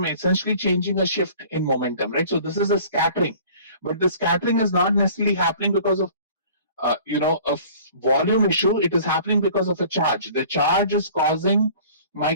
essentially changing a shift in momentum, right? So this is a scattering. But the scattering is not necessarily happening because of a volume issue. It is happening because of a charge. The charge is causing my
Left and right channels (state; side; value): inverted; both; correlation -0.48